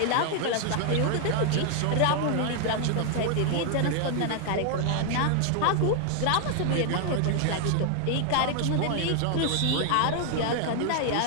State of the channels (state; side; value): different; both; correlation 0.00